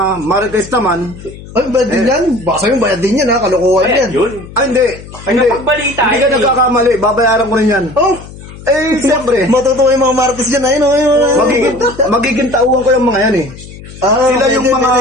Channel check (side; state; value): left; noise; hum, 16 dB below the sound